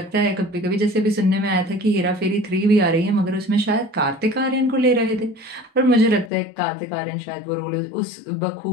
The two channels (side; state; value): right; drops out; at 6.3 s